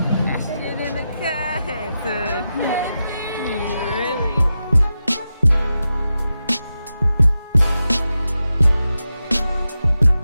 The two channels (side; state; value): both; inverted; correlation -0.90